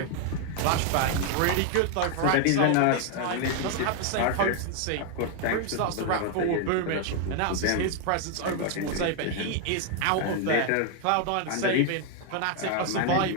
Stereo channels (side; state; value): both; different; correlation 0.00